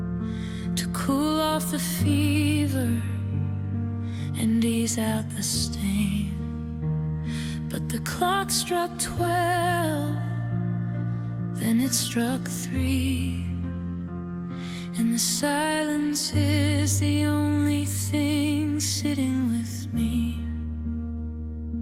to cool off the fever and ease out the stain. But the clock struck 12, then it struck 3, and the silence is the only thing sitting with me.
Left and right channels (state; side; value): identical; both; correlation 1.00